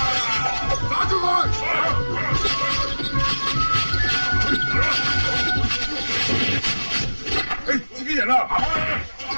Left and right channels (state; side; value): inverted; both; correlation -1.00